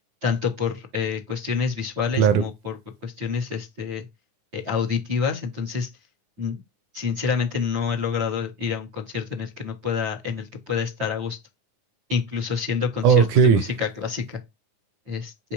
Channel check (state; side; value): late; left; 10 ms